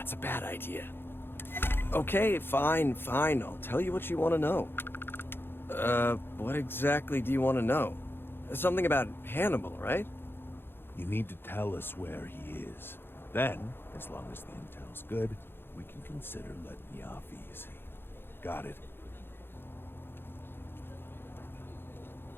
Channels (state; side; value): late; right; 0.10 ms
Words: a bad idea. Okay, fine. I'll tell you what you want to know. What exactly do you want to know? Something about Hannibal, right? You need to tell us where he is. Then, as long as the intel's good, we can consider letting you off easy. Got it?